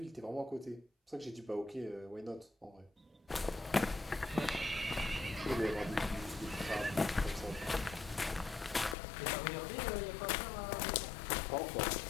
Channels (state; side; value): drops out; right; at 9.0 s